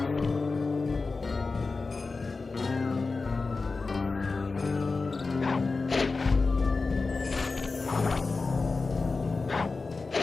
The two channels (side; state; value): right; quieter; 4.0 dB